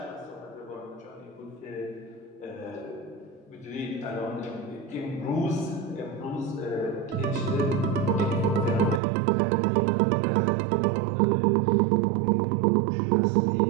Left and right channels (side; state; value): left; drops out; at 9.0 s